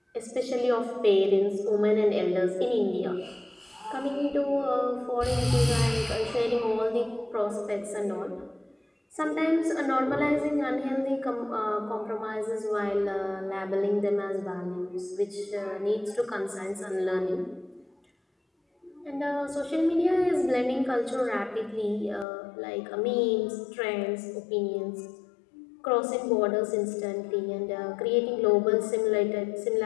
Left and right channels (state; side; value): drops out; right; at 22.2 s